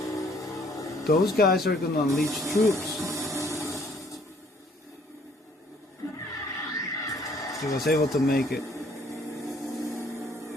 Those guys are gonna unleash troops. He was able to make it.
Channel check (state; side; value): normal; both; correlation 0.61